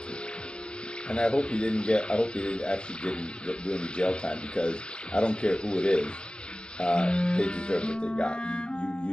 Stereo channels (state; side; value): late; right; 0.049 ms